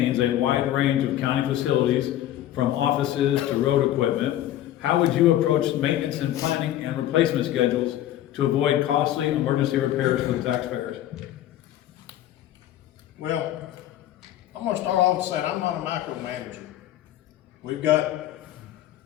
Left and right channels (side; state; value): right; quieter; 12.8 dB